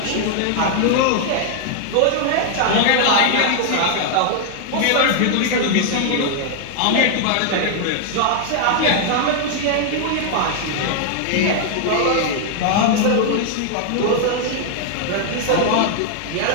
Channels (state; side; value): different; both; correlation 0.00